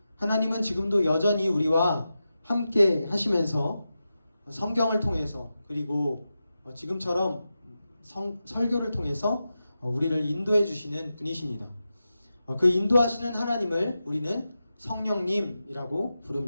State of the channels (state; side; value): inverted; both; correlation -0.91